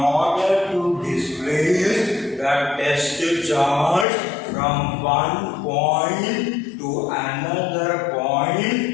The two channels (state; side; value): drops out; right; at 4.0 s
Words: to displace the test charge from one point to another